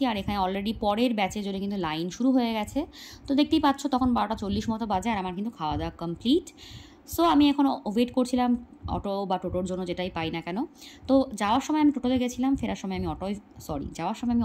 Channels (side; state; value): both; identical; correlation 1.00